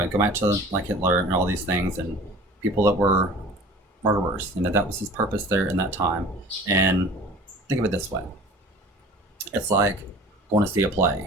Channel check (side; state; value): both; normal; correlation 0.44